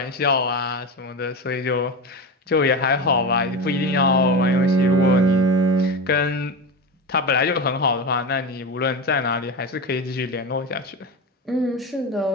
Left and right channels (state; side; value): normal; both; correlation 0.21